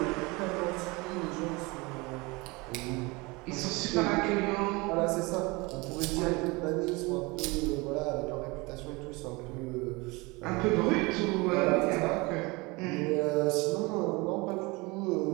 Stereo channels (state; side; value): quieter; left; 25.2 dB